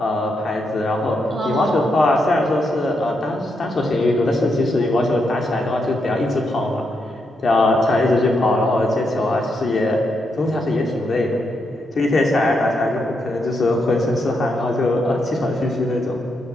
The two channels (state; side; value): normal; both; correlation 0.81